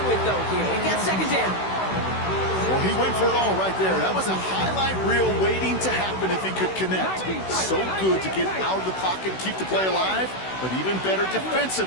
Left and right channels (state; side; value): late; right; 16 ms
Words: with, though, here. We've got 2nd down. Well, he went for it all right there. That was a highlight reel waiting to happen if he could connect. So good to get out of the pocket and keep the play alive, but even better